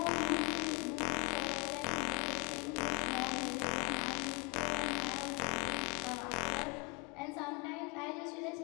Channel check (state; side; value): quieter; right; 30.3 dB